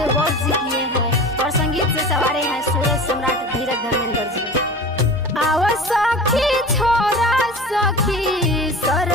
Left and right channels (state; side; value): normal; both; correlation 0.35